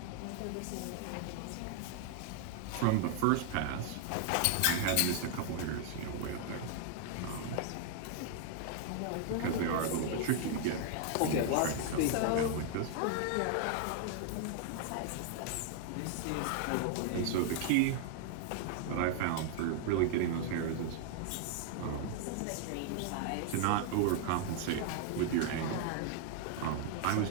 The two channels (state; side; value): different; both; correlation 0.00